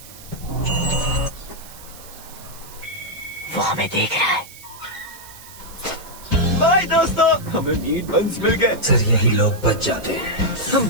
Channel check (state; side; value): noise; right; hiss, 18 dB below the sound